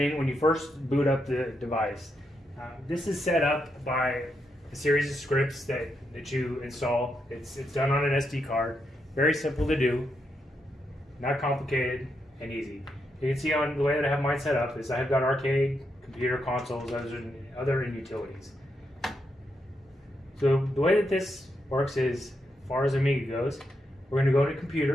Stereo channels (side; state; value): both; normal; correlation 0.82